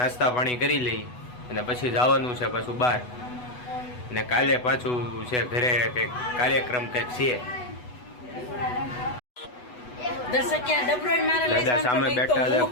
પાણી કરી લઈ અને પછી જવાનું છે પાછું બહાર ને કાલે પાછું છે ઘરે કંઈક કાર્યક્રમ કંઈક છે। દાદા સામે બેઠા છે,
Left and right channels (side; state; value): right; late; 8.1 ms